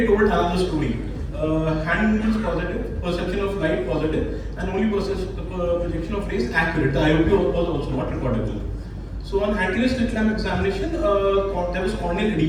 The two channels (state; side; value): identical; both; correlation 1.00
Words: told another story. Hand movements positive, perception of light positive, and only projection of rays accurate. The IOP was also not recordable. So on anterior slit lamp examination, there was corneal